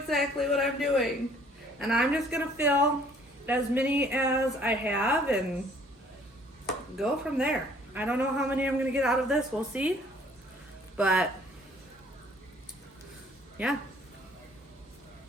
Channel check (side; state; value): both; normal; correlation 0.58